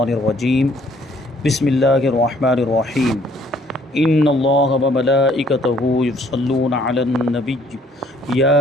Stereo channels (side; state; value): both; normal; correlation 0.61